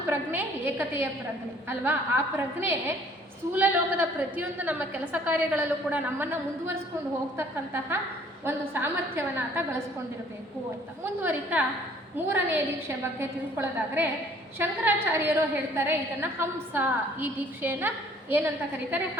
ಪ್ರಜ್ಞೆ? ಏಕತೆಯ ಪ್ರಜ್ಞೆ ಅಲ್ವಾ? ಆ ಪ್ರಜ್ಞೆ ಸ್ಥೂಲ ಲೋಕದ ಪ್ರತಿಯೊಂದು ನಮ್ಮ ಕೆಲಸ ಕಾರ್ಯಗಳಲ್ಲೂ ಕೂಡ ನಮ್ಮನ್ನು ಮುಂದುವರಿಸ್ಕೊಂಡು ಹೋಗ್ತಕ್ಕಂತಹ ಒಂದು ಸಾಮರ್ಥ್ಯವನ್ನು ಆತ ಗಳಿಸ್ಕೊಂಡಿರಬೇಕು ಅಂತ ಮುಂದುವರಿತಾ ಮೂರನೇ ದೀಕ್ಷೆ ಬಗ್ಗೆ ತಿಳ್ಕೊಳ್ಳೋದಾದರೆ ಶಂಕರಾಚಾರ್ಯರು ಹೇಳ್ತಾರೆ ಇದನ್ನು ಹಂಸ, ಈ ದೀಕ್ಷೆಯನ್ನು ಏನಂತ ಕರೀತಾರೆ?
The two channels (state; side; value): normal; both; correlation 0.57